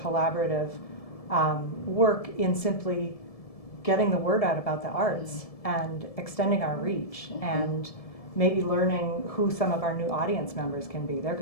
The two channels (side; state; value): right; late; 1.7 ms